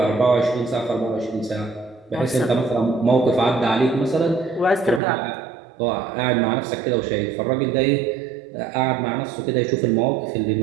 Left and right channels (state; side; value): drops out; left; at 5.0 s